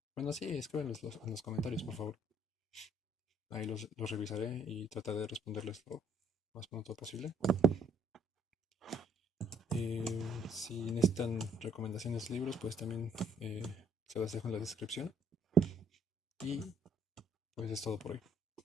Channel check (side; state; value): both; normal; correlation 0.63